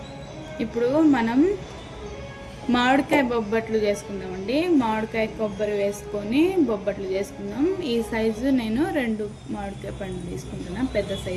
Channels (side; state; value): both; identical; correlation 1.00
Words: ఇప్పుడు మనం మామిడికాయ బొబ్బట్లు చేసుకుందామండి. మామిడికాయ కొబ్బరి వేసుకొని బొబ్బట్లు చేసుకుందాం. ఈ సైజు నేను 2 మామిడికాయ పండ్లు తీసుకుంటున్నాను, పెద్ద